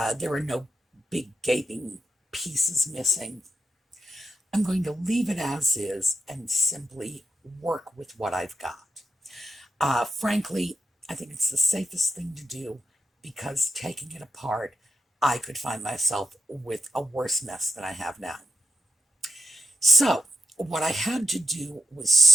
there are no big gaping pieces missing, I'm going to leave it as is and simply work with what I've got. Frankly, I think it's the safest thing to do, because taking it apart, I could find myself with a worse mess than I have now. So what I had to do was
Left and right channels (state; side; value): normal; both; correlation 0.85